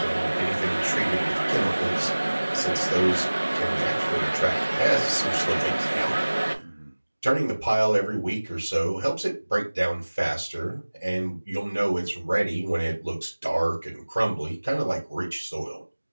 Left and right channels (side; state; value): both; inverted; correlation -1.00